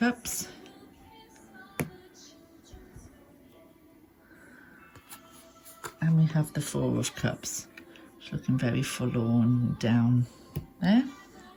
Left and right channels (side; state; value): both; identical; correlation 1.00